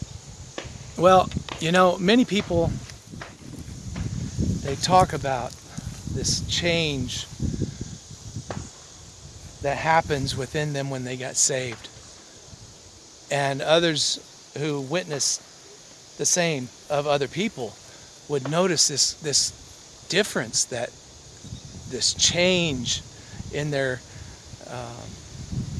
Well, many people, they talk about this change that happens within them when they got saved. And others who witness the same of other people would notice this difference, this change in their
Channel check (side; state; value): both; identical; correlation 1.00